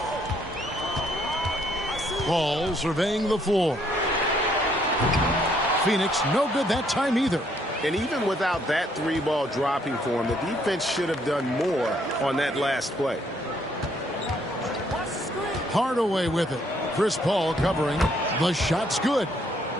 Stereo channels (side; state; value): both; normal; correlation 0.68